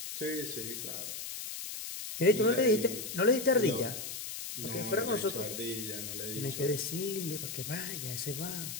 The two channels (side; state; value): left; noise; hiss, 7 dB below the sound